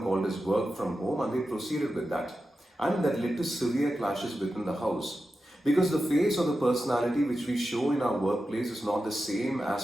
called as work from home, and they proceeded with that. And that led to severe clashes within the house. Because the face or the personality which we show in our workplace is not the same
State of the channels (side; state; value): both; normal; correlation 0.91